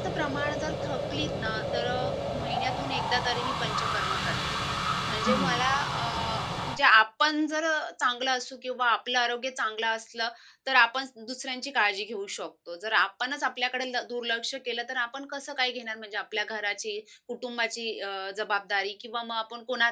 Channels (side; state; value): both; identical; correlation 1.00